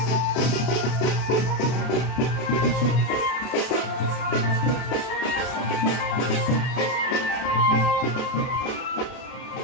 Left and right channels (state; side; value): late; right; 32 ms